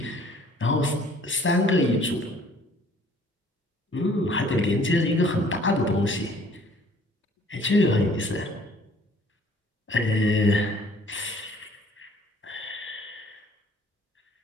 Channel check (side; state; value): both; normal; correlation 0.56